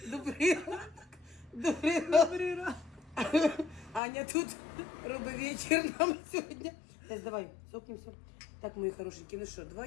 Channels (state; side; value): drops out; right; at 4.0 s